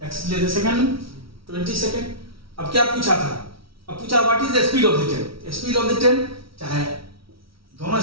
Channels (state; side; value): late; left; 0.75 ms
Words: x लिए थे सेकेंड में 20 सेकेंड। अब क्या पूछा था? अब पूछा what is the speed of the train. Speed of the train, चाहे दोनों